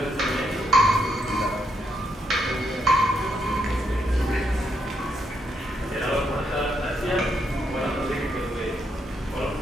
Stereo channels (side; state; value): both; normal; correlation 0.78